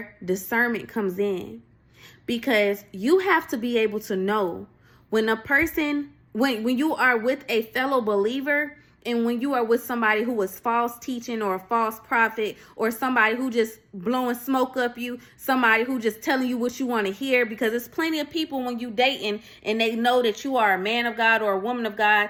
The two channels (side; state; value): both; identical; correlation 1.00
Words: discernment comes in. Because you have to be able to know when a person, when you are with a fellow believer, and when you are with somebody who is false teaching or a false prophet, or somebody who just blowing smoke up you, somebody who just telling you what you want to hear. Because there's plenty of people when you dating and they know that you are a man of God or a woman of